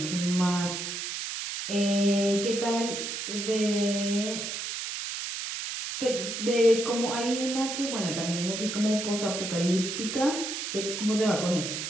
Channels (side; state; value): right; noise; hiss, 5 dB below the sound